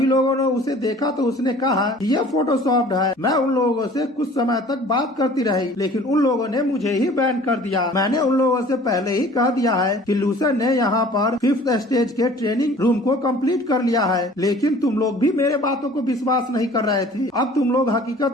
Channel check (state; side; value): normal; both; correlation 0.49